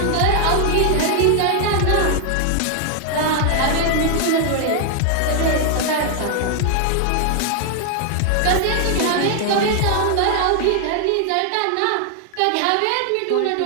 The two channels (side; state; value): both; different; correlation 0.00